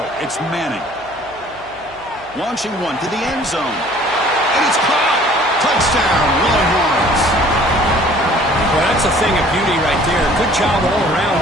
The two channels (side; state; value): right; noise; hum, 25 dB below the sound